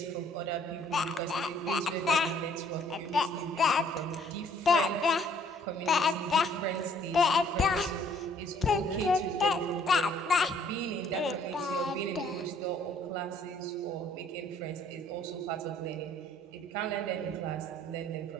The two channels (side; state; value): both; normal; correlation 0.61